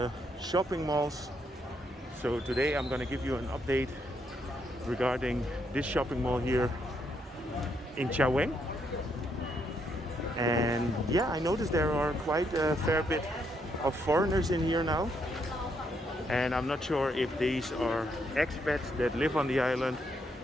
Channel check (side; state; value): both; normal; correlation 0.76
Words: shopping malls. So today I'm going to give you an update regarding this shopping mall here in Chaweng. And yeah, I noticed there are quite a fair bit of foreigners in here now. And I'm not sure if these are expats that live on the island